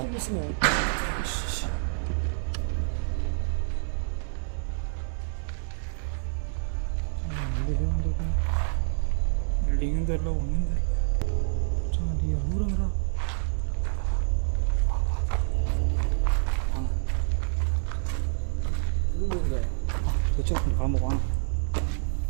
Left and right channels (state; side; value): silent; left; 60 dB below the other